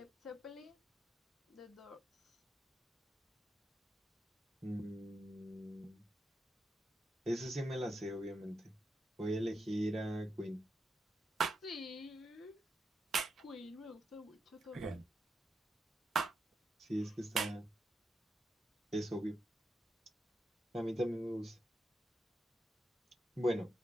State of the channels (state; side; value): normal; both; correlation 0.85